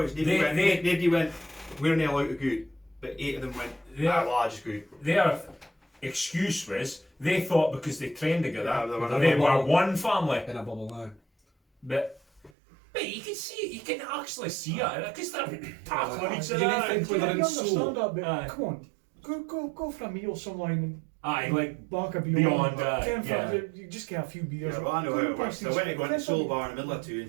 nobody went, we're not allowed to go out. But 8 of them went, well, I just go out. Their excuse was, they thought because they trained together, they were one family. In a bubble now. But you can see it, you can actually see it, because they're tackling each You other. think when they're in understand soul. that, but come on, go for a meal somewhere and like bark a beyond, you just get a few beers. Yeah, well, I know how it works. I went to go into Soul Bar in the middle of town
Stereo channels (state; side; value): drops out; left; at 12.5 s